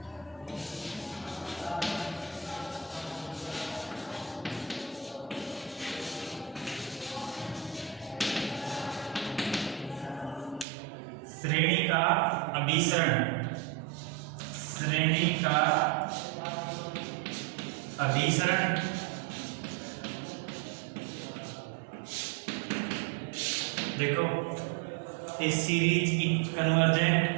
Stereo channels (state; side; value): drops out; left; at 10.7 s